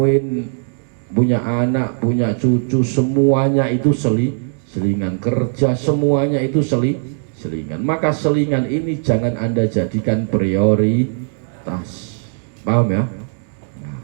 punya anak, punya cucu, semuanya itu selingan, kerja semuanya itu selingan. Maka selingan ini jangan Anda jadikan prioritas, paham ya? Nah,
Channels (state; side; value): silent; left; 67 dB below the other